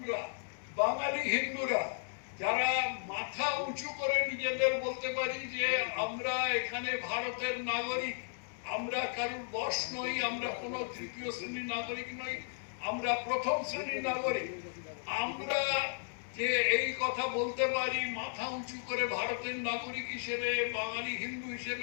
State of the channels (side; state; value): right; silent; digital silence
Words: বাঙালি হিন্দুরা যারা মাথা উঁচু করে নিজেদের বলতে পারি যে আমরা এখানে ভারতের নাগরিক, আমরা কারোর বশ নই, আমরা কোনো তৃতীয় শ্রেণীর নাগরিক নই, আমরা প্রথম শ্রেণীর নাগরিক, আমরা যে এই কথা বলতে পারি মাথা উঁচু করে ভারতের নাগরিক হিসেবে, বাঙালি হিন্দু